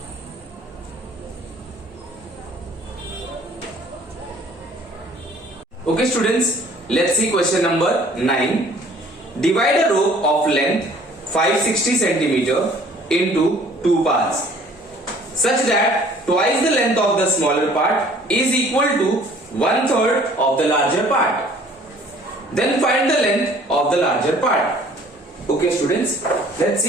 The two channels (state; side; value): normal; both; correlation 0.54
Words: Okay students, let's see question number 9. Divide a rope of length 560 cm into 2 parts such that twice the length of the smaller part is equal to 1/3 of the larger part. Then find the length of the larger part. Okay students, let's